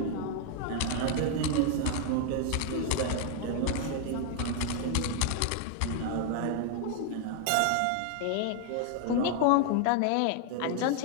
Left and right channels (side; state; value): both; different; correlation 0.00